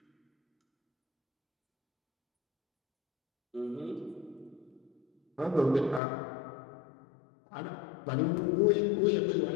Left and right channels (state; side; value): drops out; right; at 6.0 s